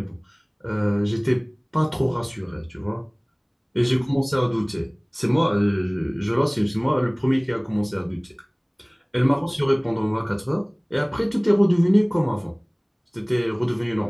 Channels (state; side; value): identical; both; correlation 1.00